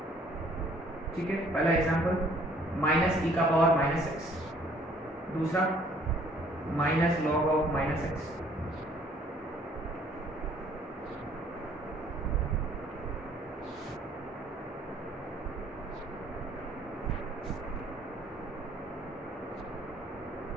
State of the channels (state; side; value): normal; both; correlation 0.59